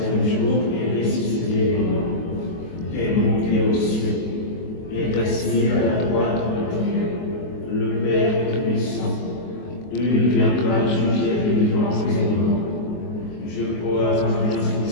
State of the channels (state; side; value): late; right; 23 ms